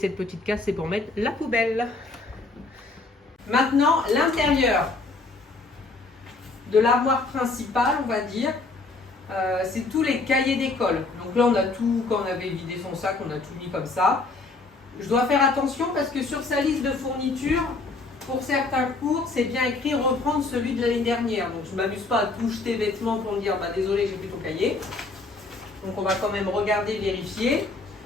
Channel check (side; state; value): right; quieter; 3.5 dB